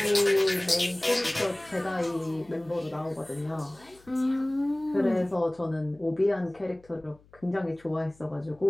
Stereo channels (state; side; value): noise; left; hum, 28 dB below the sound